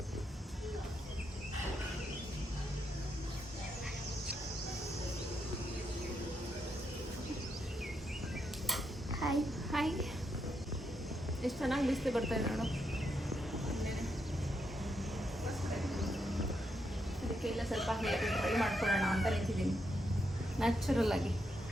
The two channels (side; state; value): both; normal; correlation 0.80